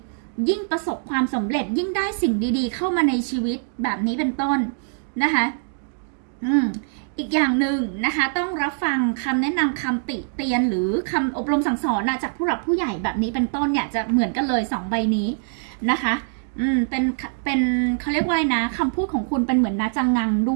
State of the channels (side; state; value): left; silent; digital silence